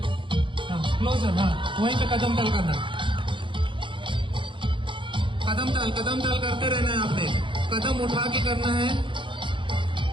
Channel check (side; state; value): left; late; 0.24 ms